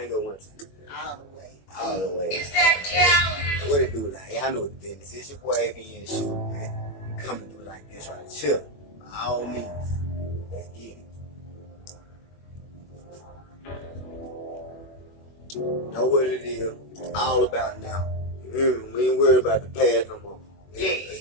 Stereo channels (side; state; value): right; late; 21 ms